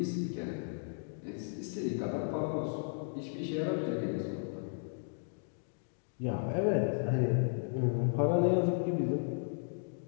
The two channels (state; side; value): silent; right; digital silence